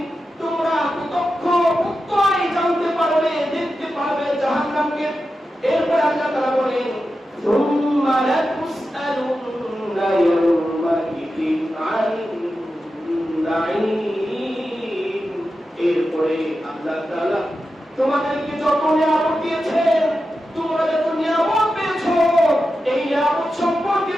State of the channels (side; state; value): both; normal; correlation 0.91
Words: তোমরা প্রত্যয় জানতে পারবে, দেখতে পারবে জাহান্নামকে। এরপর আল্লাহ তাআলা বলেন, সুম্মা লাতুসআলুন্না ইয়াওমাইযিন আনিন নাঈম, এরপরে আল্লাহ তাআলা তোমাদেরকে যত নিয়ামত দিয়েছেন, তোমরা যত নিয়ামত পেয়েছো, এই নিয়ামত সম্পর্কে